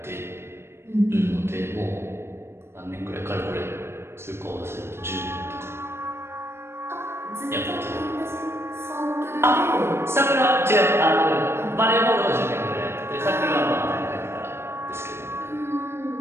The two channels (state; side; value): late; left; 0.12 ms